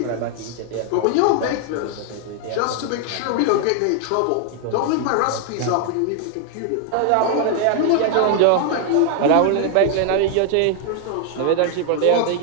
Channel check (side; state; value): both; different; correlation 0.00